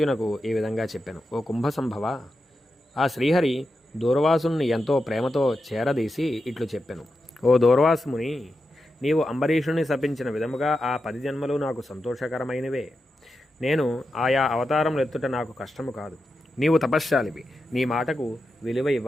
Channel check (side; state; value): both; normal; correlation 0.89